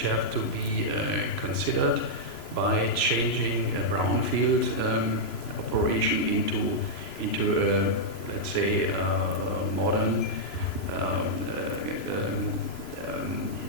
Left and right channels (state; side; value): late; right; 3.0 ms